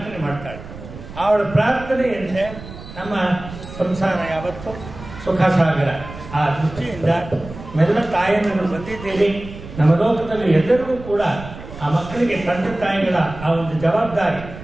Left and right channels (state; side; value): noise; right; rumble, 14 dB below the sound